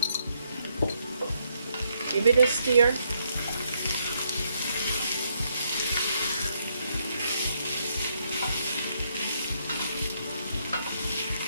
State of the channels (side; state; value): both; inverted; correlation -0.75